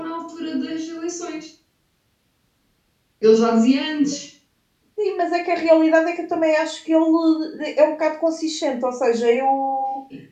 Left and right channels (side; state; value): both; identical; correlation 1.00